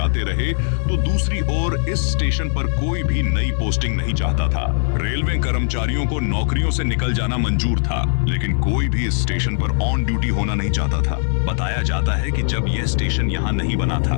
रहे तो दूसरी ओर इस स्टेशन पर कोई भी नई पोस्टिंग नहीं चाहता था। रेलवे कर्मचारियों को नौकरियों से निकल जाना मंजूर था, लेकिन कोई भी इस स्टेशन पर ऑन ड्यूटी होना नहीं चाहता था। बताया जाता है कि जब यह स्टेशन यहाँ नहीं बना था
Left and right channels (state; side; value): silent; right; 59 dB below the other